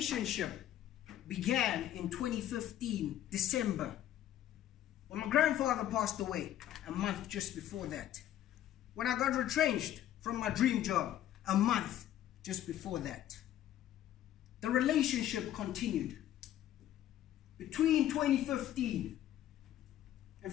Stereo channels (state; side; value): quieter; right; 12.1 dB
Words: began in 2015, December, when my grandfather passed away a month just before that. When I got retrenched from my dream job a month just before that. The relationship continued. Between 2015 and